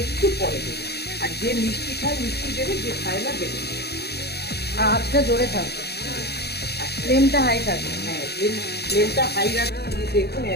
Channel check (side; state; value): right; late; 0.47 ms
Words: একটু পরে দেবে। আর যে মিষ্টি খায় মিষ্টি দেবে, যে খায় না দেবে। আর আঁচটা জোরে থাকবে, ফ্লেমটা হাই থাকবে। হ্যাঁ, ফ্লেমটা হাই রাখতে। দেখুন